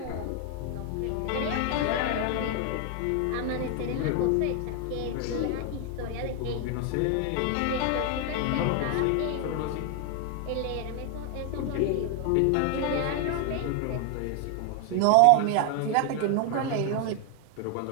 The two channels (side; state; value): both; different; correlation 0.00